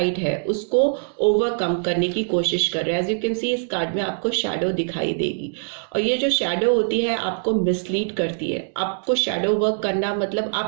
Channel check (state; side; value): silent; left; digital silence